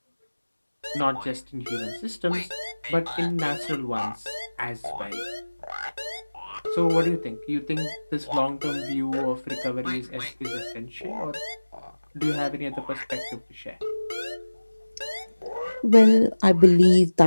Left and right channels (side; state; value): both; inverted; correlation -1.00